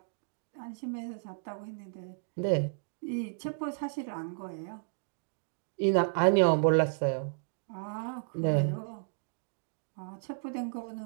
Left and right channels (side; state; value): left; silent; digital silence